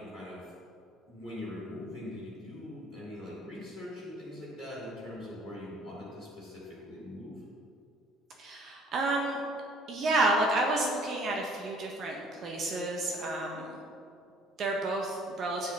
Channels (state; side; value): normal; both; correlation 0.56